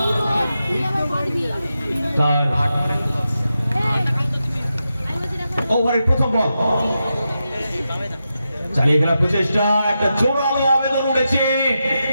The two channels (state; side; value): inverted; both; correlation -0.88